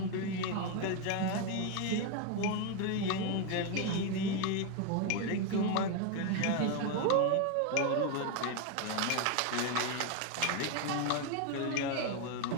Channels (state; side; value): different; both; correlation 0.02